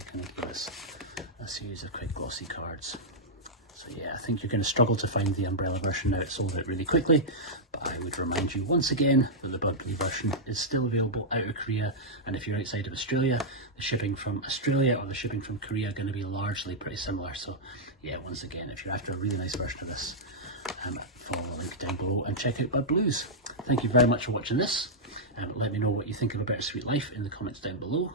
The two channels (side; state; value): both; normal; correlation -0.07